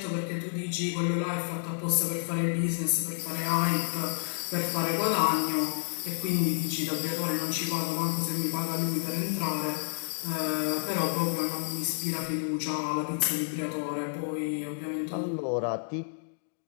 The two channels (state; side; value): silent; right; digital silence